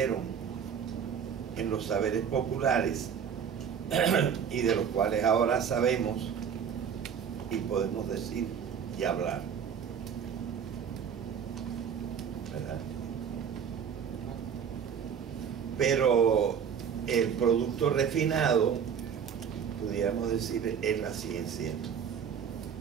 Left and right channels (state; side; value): quieter; left; 7.6 dB